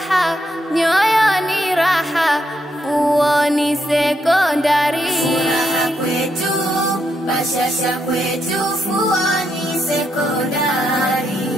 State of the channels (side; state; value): both; normal; correlation 0.79